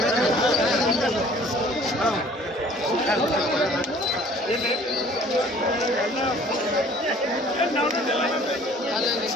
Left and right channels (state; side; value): normal; both; correlation 0.53